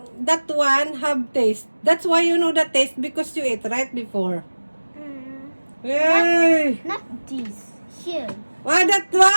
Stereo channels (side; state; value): both; inverted; correlation -1.00